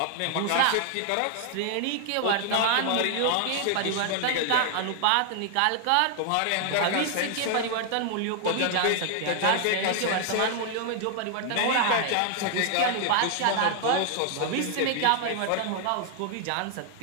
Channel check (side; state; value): both; different; correlation 0.00